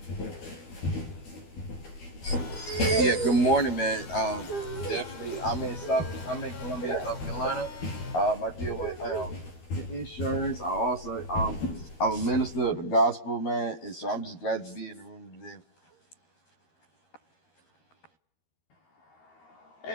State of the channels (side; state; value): right; late; 12 ms